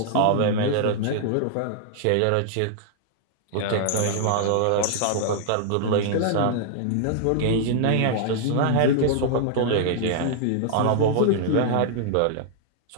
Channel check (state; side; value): different; both; correlation -0.01